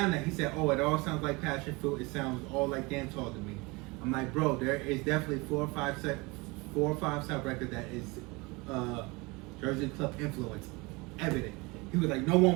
that. He said, "Oh, it all sounds like Passion Fruit. It sounds all like dancehall to me." I'm like, bro, there is definitely 4 or 5 sub record that is Jersey club influence, evident. He was like, no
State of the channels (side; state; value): left; quieter; 25.5 dB